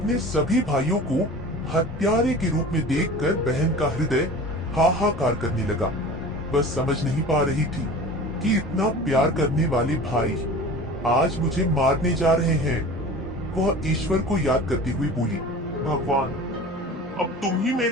सभी भाइयों को हत्यारे के रूप में देखकर बहन का हृदय हाहाकार करने लगा। बस समझ नहीं पा रही थी कि इतना प्यार करने वाले भाई आज मुझे मारने जा रहे हैं। वह ईश्वर को याद करती हुई बोली, भगवान, अब तुम ही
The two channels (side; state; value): both; normal; correlation 0.38